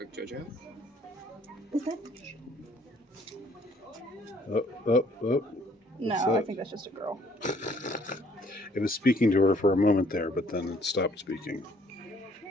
JoJo? Is that? Oh. No, What's I that? think that's just a girl. It was speaking to her for a moment there, but then it stopped speaking.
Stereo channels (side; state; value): both; normal; correlation 0.62